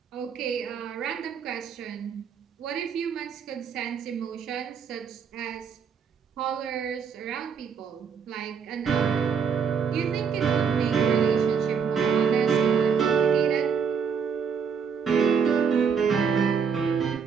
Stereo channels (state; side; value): quieter; left; 6.5 dB